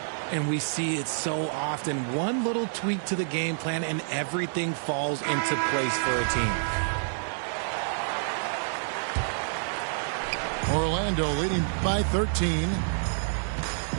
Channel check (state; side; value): silent; left; digital silence